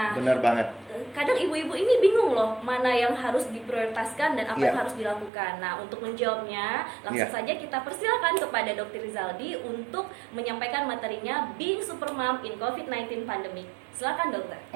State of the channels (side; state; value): left; drops out; at 5.3 s